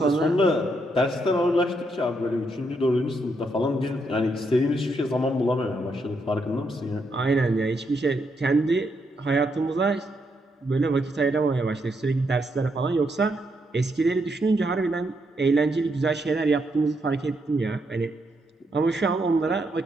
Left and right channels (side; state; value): both; normal; correlation 0.78